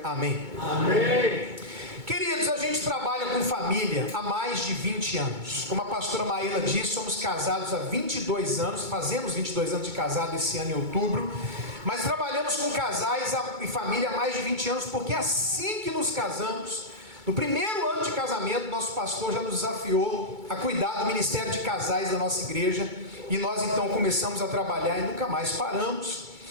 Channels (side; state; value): left; late; 2.2 ms